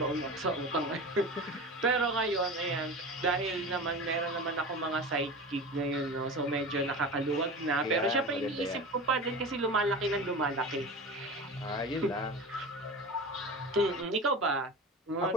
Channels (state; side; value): normal; both; correlation 0.30